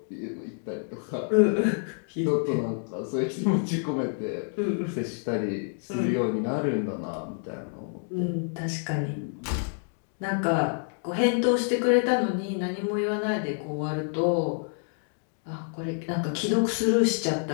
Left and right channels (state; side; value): silent; right; 59 dB below the other